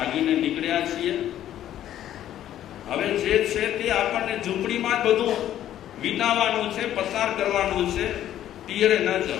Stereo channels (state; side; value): quieter; right; 11.8 dB